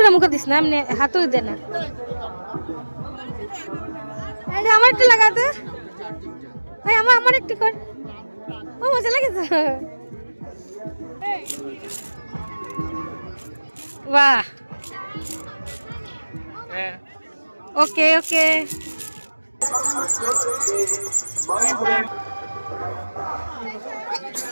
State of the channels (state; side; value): inverted; both; correlation -1.00